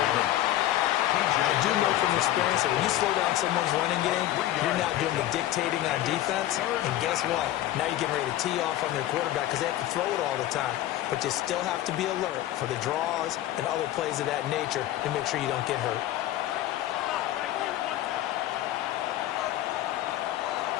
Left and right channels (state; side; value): quieter; right; 13.9 dB